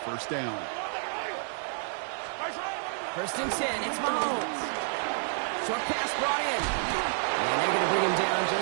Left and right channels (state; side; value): silent; left; digital silence